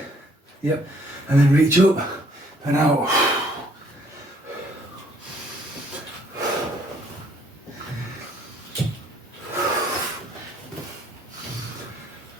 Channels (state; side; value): normal; both; correlation 0.63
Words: yep, and then reach up and out.